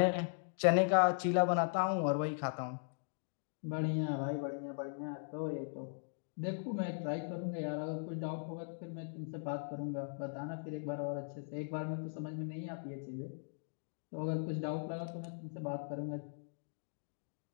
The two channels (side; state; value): right; silent; digital silence